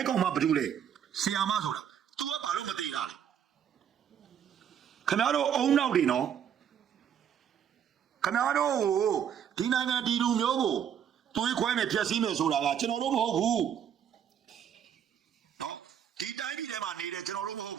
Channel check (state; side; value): quieter; left; 8.9 dB